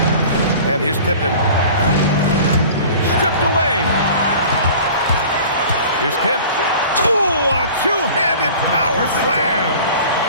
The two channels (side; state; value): both; inverted; correlation -0.43